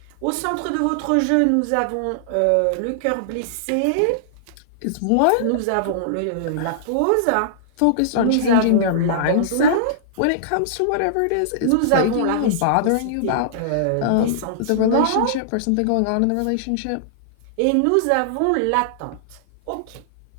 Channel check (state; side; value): different; both; correlation -0.01